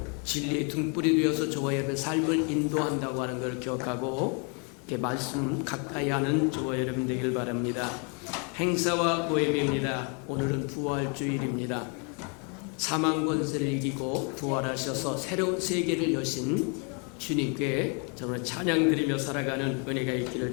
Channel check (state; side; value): quieter; right; 36.6 dB